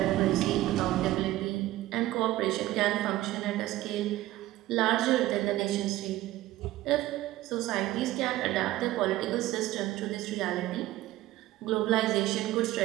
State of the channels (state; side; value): quieter; left; 16.0 dB